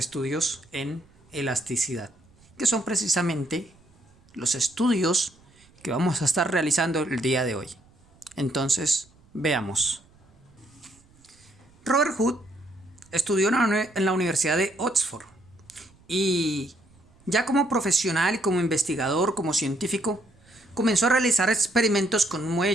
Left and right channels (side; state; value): right; noise; rumble, 29 dB below the sound